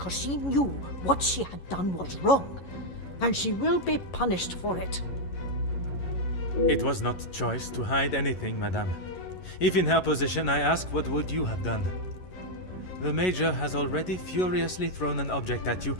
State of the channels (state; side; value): late; right; 11 ms